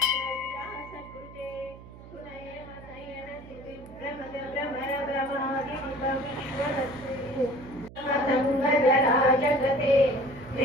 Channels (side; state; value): right; noise; hum, 17 dB below the sound